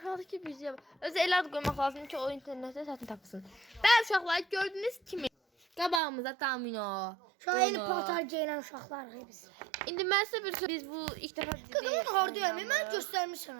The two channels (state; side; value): drops out; left; at 6.0 s